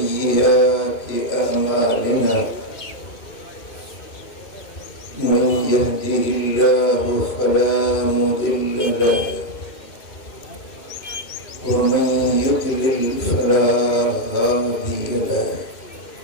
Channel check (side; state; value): right; late; 2.6 ms